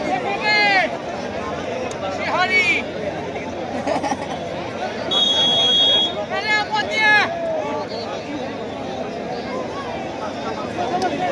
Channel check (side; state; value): both; identical; correlation 1.00